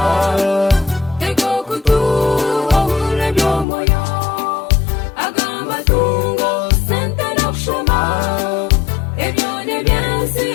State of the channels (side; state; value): right; drops out; at 3.7 s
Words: ego kutu ohure byomoyo agamatungo sente nokushoma ebyo nebyensi